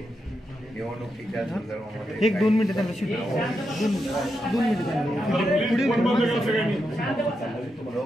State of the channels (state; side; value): normal; both; correlation 0.85